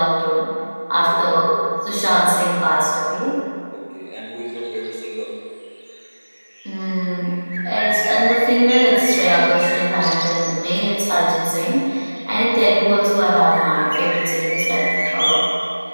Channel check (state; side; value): inverted; both; correlation -1.00